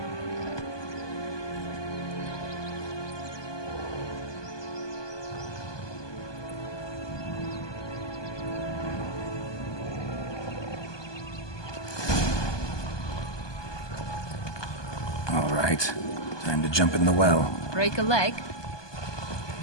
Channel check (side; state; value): right; late; 1.2 ms